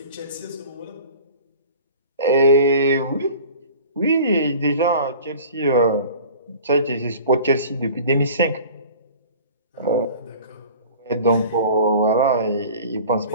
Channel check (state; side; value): inverted; both; correlation -0.42